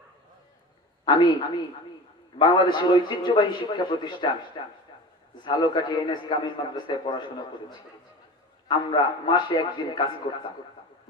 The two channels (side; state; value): both; normal; correlation 0.33